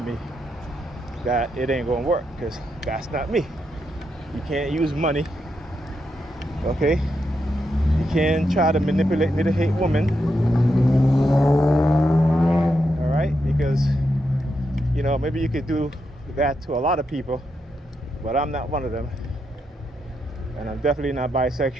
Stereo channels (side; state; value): both; normal; correlation 0.83